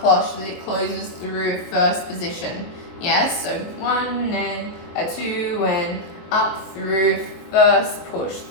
that it closes through first position. Yes, so 1 and a 2 and up through first, push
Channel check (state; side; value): late; right; 23 ms